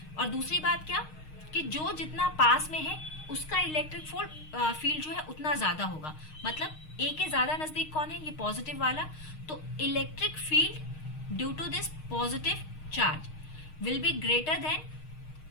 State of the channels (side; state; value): right; late; 6.5 ms